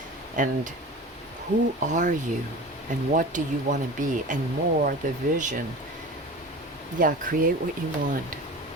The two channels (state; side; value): normal; both; correlation 0.34